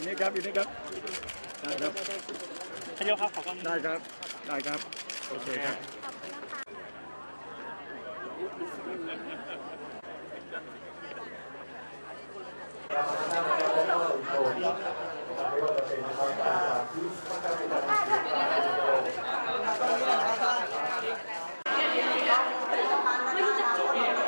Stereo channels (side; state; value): both; inverted; correlation -1.00